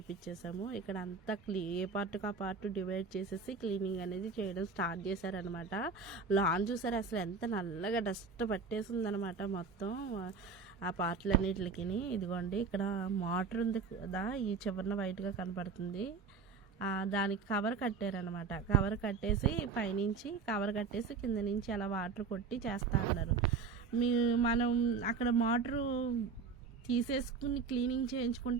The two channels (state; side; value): quieter; left; 5.0 dB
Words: ఇక్కడ అంతా ఏ పార్ట్కి ఆ పార్ట్ డివైడ్ చేసేసి క్లీనింగ్ అనేది చేయడం స్టార్ట్ చేశారనమాట. లాన్ చూసారు అసలు ఎంత నల్లగా డస్ట్ పట్టేసి ఉందనమాట మొత్తం ఆ పార్ట్లన్నిటికి. ఇదిగోండి ఇక్కడ మోటార్ ఉంది కదా, ఈ చివరన వైట్గా కనపడుతుంది. దానికి కవర్ కట్టారనమాట. కవర్ కట్టేసి పైనుంచి కవర్ కట్టేసి కింద నుంచి అలా వాటర్ కొట్టి చేస్తా అన్నారు. మనం అక్కడ మోటరు తీసేసుకుని క్లీనింగ్